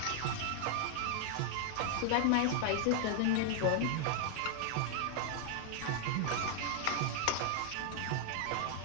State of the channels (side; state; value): both; different; correlation 0.00